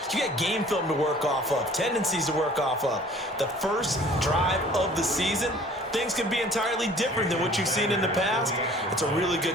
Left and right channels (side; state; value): both; normal; correlation 0.51